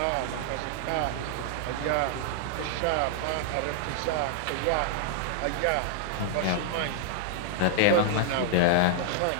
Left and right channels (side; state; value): both; different; correlation -0.01